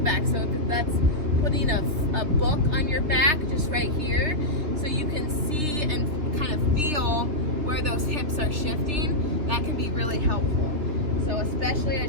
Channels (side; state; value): left; late; 3.3 ms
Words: So if that's putting a book on your back, just right here, so you can see and kind of feel where those hips are shifting, that can be really helpful. So especially